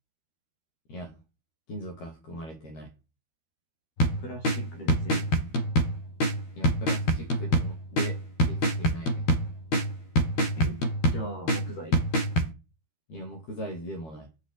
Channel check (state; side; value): late; right; 13 ms